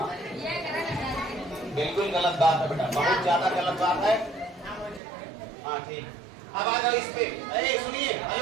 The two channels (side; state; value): left; drops out; at 5.0 s